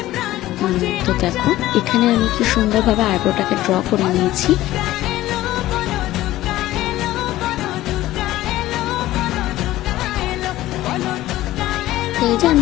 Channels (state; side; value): quieter; right; 15.6 dB